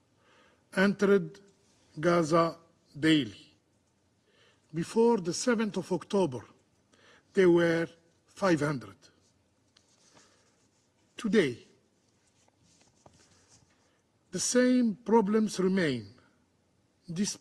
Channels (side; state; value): both; identical; correlation 1.00